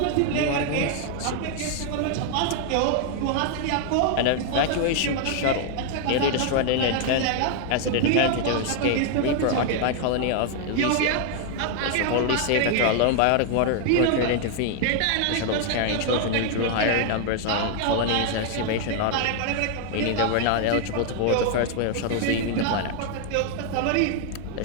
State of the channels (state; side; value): different; both; correlation 0.00